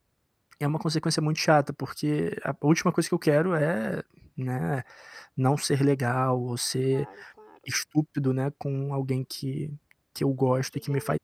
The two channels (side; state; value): both; identical; correlation 1.00